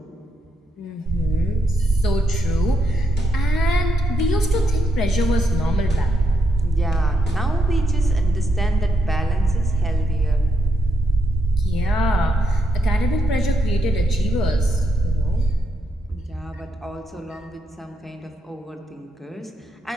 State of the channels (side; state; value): both; normal; correlation 0.80